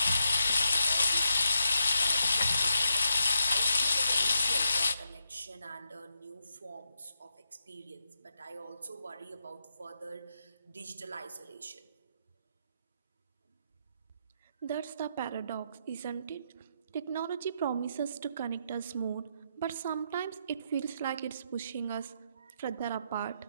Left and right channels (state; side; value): inverted; both; correlation -0.83